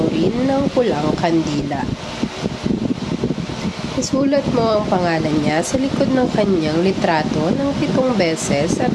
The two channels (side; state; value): both; identical; correlation 1.00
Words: rin ng pulang kandila. Isulat mo ang pangalan niya sa likod ng kanyang litrato ng 7 beses at